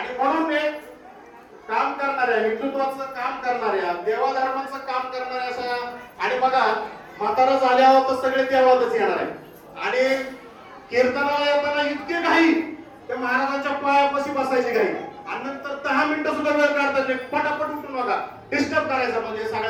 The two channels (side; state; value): both; identical; correlation 1.00